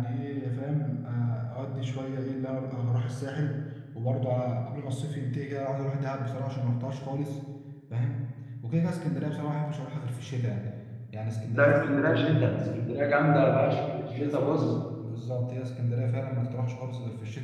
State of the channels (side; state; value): both; identical; correlation 1.00